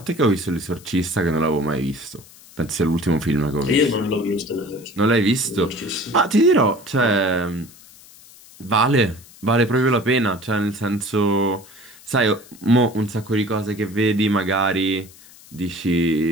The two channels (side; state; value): left; noise; hiss, 22 dB below the sound